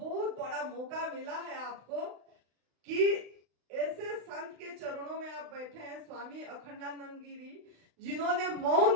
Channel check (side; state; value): left; late; 35 ms